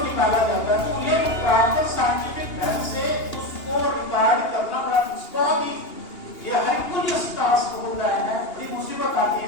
निकाला जाता है। तो ये प्रॉपर साइंटिफिक ढंग से उसको रिकॉर्ड करना बड़ा बहुत ही ये हरकुलियस टास्क होता है, बड़ी मुसीबत आती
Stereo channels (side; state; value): right; late; 2.8 ms